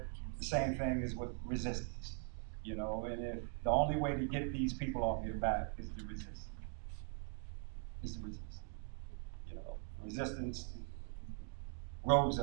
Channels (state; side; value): quieter; left; 40.0 dB